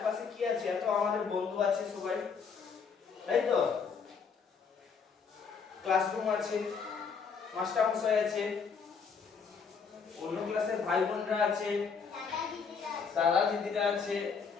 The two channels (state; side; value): quieter; right; 5.8 dB